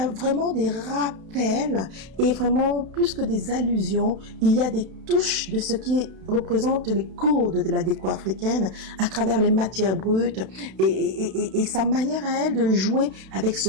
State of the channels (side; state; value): left; late; 32 ms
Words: vraiment des rappels et vraiment plus que des allusions, il y a des touches de ce qui représente les codes de la déco africaine à travers les matières brutes et sa manière à elle de jouer avec ce